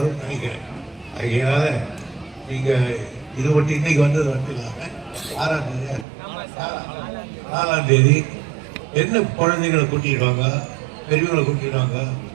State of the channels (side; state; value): left; drops out; at 6.1 s